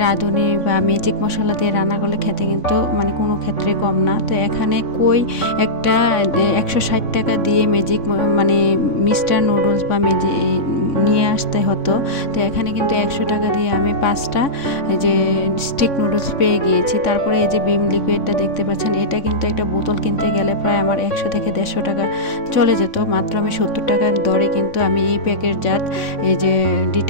রাঁধুনি বা ম্যাজিক মশলা দিয়ে রান্না করলে খেতে কিন্তু মানে কোনো ক্ষেত্রে কম না। তো এখানে কই একটা 160 টাকা দিয়ে মানে মিস্টার নুডলস বা নিয়ে আসতে হতো। তো এখানে কিন্তু 100 টাকা দিয়ে আমি 5টা যে স্টিক নুডলস পেয়ে গিয়েছি। তারপরে এই যে ভিম লিকুইডটা দেখতে পাচ্ছেন, এটা কিন্তু একটা বোতল কিনতে গেলে প্রায় আমার 100 থেকে 150 টাকা চলে যেত। মাত্র আমি 70 টাকার দরে কিন্তু আমি এই প্যাকেটজাত এই যে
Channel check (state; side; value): late; right; 3.6 ms